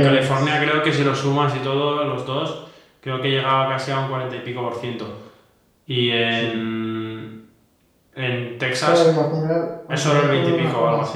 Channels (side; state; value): both; identical; correlation 1.00